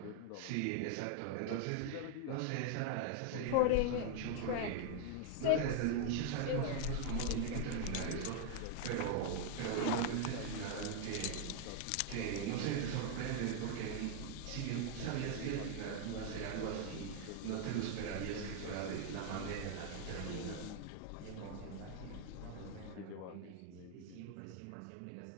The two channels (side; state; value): both; different; correlation 0.00